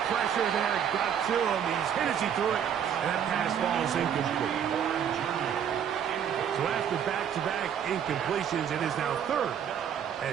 pressure there got to him. He's hit as he threw it, and that pass falls incomplete. So after back-to-back incompletions, it is now 3rd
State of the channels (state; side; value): quieter; left; 8.6 dB